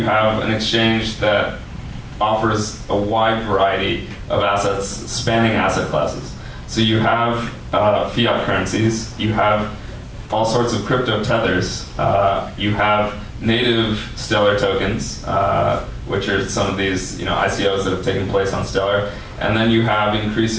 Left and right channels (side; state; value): both; identical; correlation 1.00